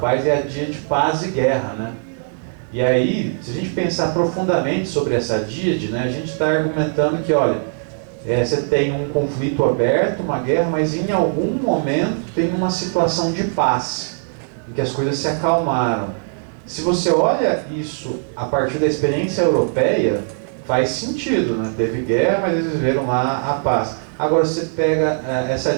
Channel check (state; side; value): silent; left; digital silence